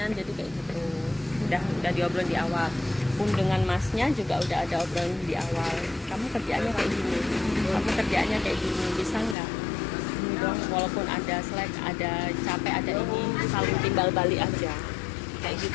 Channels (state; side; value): drops out; right; at 9.3 s